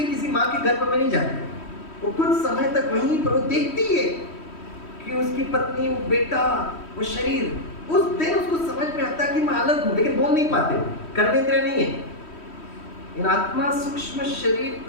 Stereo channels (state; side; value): late; right; 3.1 ms